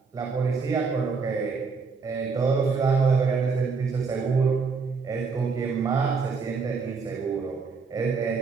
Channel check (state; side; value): quieter; left; 4.9 dB